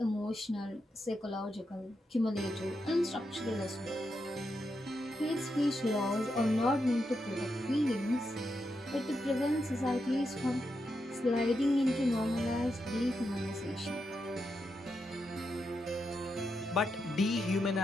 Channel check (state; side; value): normal; both; correlation 0.85